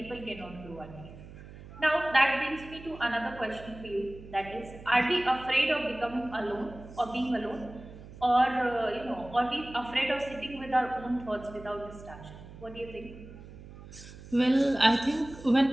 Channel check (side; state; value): right; noise; hum, 16 dB below the sound